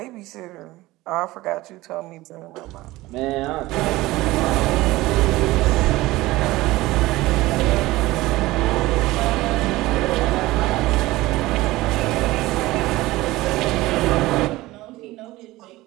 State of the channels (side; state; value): left; quieter; 18.7 dB